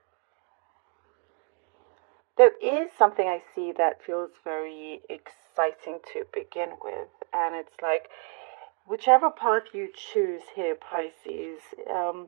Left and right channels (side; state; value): left; quieter; 38.4 dB